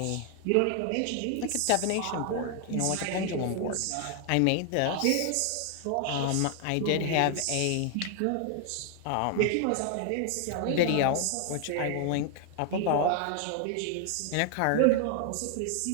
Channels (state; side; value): different; both; correlation 0.00